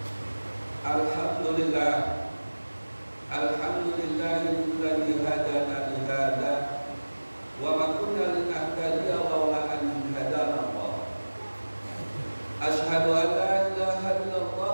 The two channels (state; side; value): inverted; both; correlation -1.00